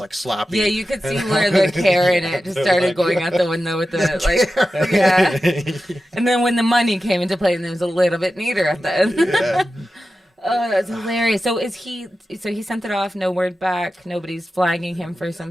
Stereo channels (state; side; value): normal; both; correlation 0.92